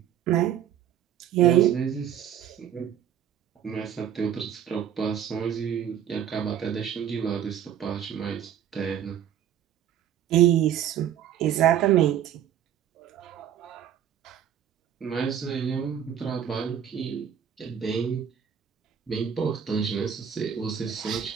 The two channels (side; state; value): left; quieter; 9.6 dB